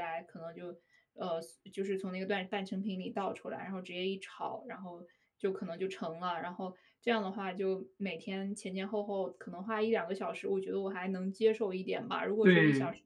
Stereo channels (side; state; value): both; identical; correlation 1.00